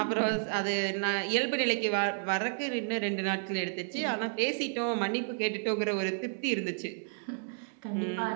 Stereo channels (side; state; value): left; silent; digital silence